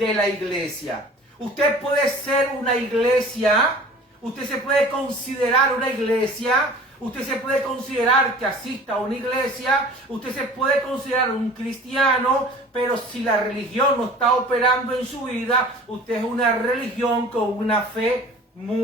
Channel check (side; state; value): both; normal; correlation 0.44